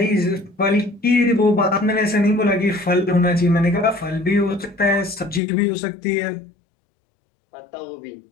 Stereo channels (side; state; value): right; drops out; at 5.4 s